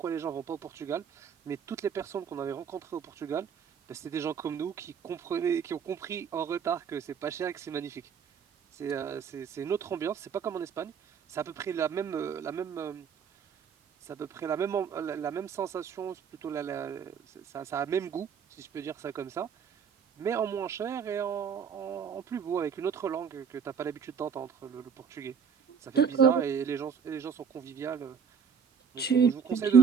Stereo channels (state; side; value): quieter; left; 6.9 dB